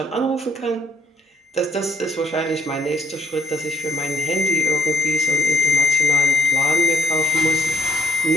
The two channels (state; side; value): normal; both; correlation 0.64